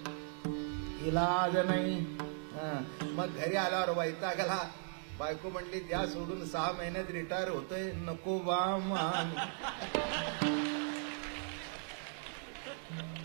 इलाज नाही. मग घरी आल्यावर वैतागला, बायको म्हणली द्या सोडून 6 महिन्यात रिटायर होतोय. नको बा मान,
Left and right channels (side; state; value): left; silent; 53 dB below the other